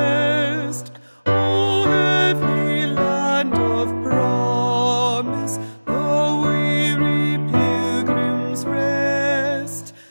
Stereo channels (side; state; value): both; inverted; correlation -1.00